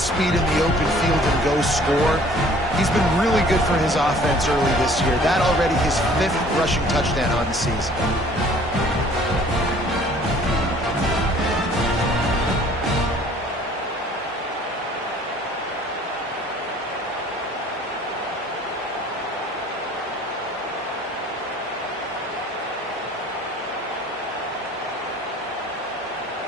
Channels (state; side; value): normal; both; correlation 0.53